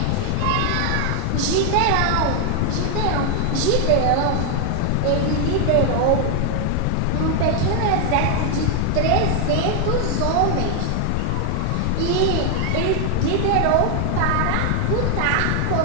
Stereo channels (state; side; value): different; both; correlation 0.00